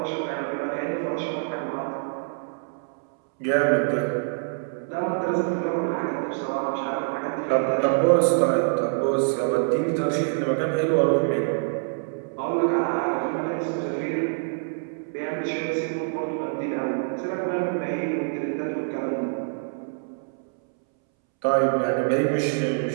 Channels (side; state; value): left; silent; 61 dB below the other